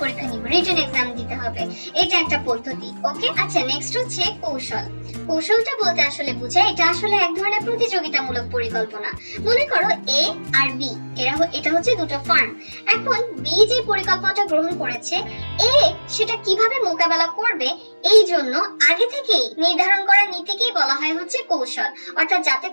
পরীক্ষা নিব, রিটেন এক্সাম দিতে হবে, এটা একটা পদ্ধতি। ওকে, আচ্ছা নেক্সট হচ্ছে কৌশল। কৌশলটা বলতে আসলে বোঝায় এটা আসলে এক ধরনের প্রতিযোগিতামূলক পরিকল্পনা। মনে করো এ আর বি এটা হচ্ছে দুটো ফার্ম। এখন বি যে পরিকল্পনাটা গ্রহণ করেছে এ সেটা কিভাবে মোকাবেলা করবে এই জন্য আগে থেকেই নির্ধারণ করা নীতিকেই বলা হয় হচ্ছে কৌশল, অর্থাৎ যাতে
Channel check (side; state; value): both; inverted; correlation -1.00